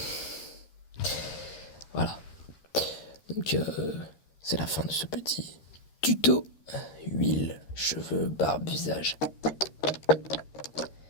Voilà. Donc c'est la fin de ce petit tuto. Huile, cheveux, barbe, visage.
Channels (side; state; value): right; late; 13 ms